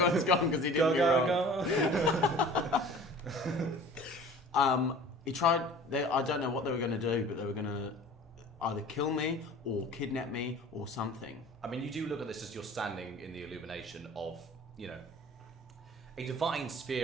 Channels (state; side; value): normal; both; correlation 0.44